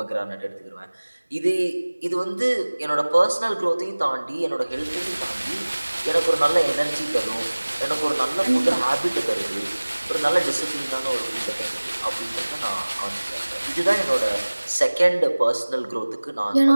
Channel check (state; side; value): inverted; both; correlation -1.00